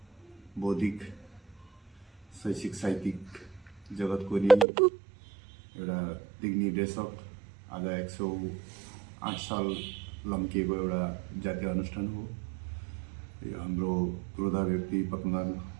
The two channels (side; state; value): left; drops out; at 4.7 s